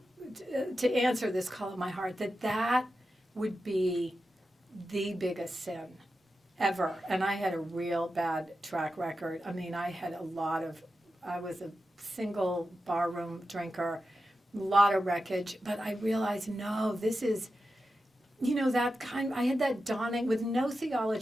to answer this call of my heart, that would be the biggest sin ever. And I had a real bad track record. I mean, I was a single barroom drinker, a lot of wreckage, but I realized, no, this is, I had that dawning with no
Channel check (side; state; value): both; normal; correlation 0.91